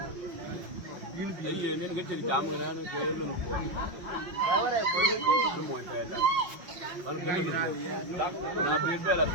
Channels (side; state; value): left; late; 5.6 ms